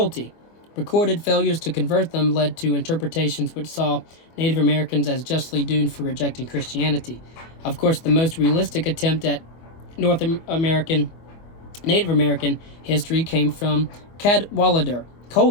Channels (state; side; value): late; right; 25 ms